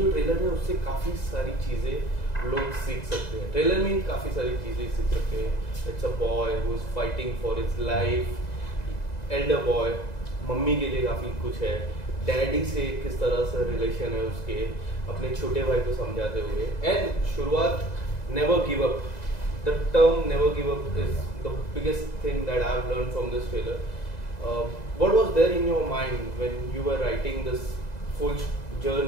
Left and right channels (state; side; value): late; right; 2.0 ms